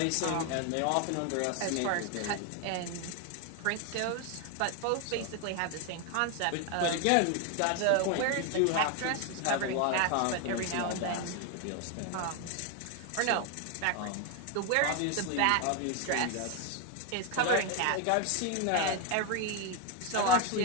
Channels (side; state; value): both; different; correlation 0.01